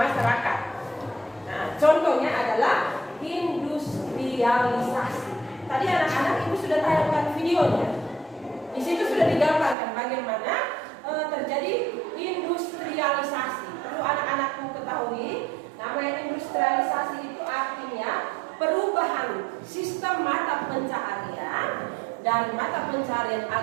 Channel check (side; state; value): left; drops out; at 9.8 s